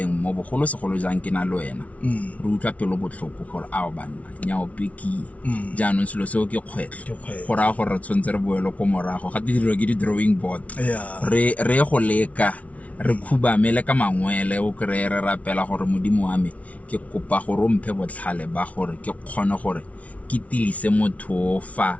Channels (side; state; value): right; late; 0.067 ms